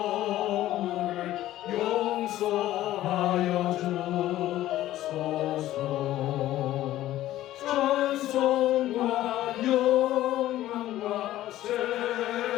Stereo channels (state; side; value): quieter; right; 14.3 dB